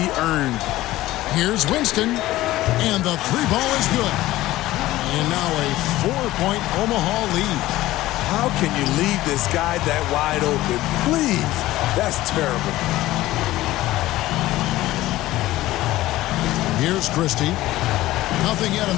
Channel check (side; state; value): right; quieter; 16.4 dB